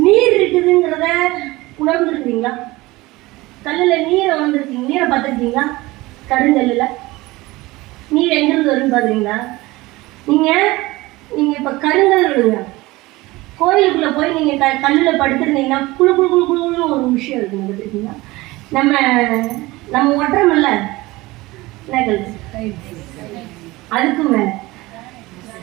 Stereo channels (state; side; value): quieter; left; 20.4 dB